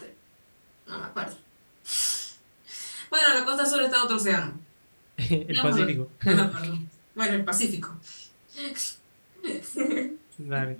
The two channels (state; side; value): inverted; both; correlation -1.00